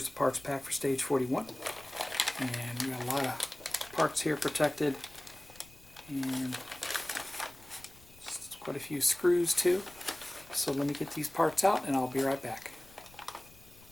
the parts pack for stage 41. And we got a lot of parts here protected, and quite a few screws too. So let me get these parts out and I'll be right back.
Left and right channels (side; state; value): left; noise; rumble, 24 dB below the sound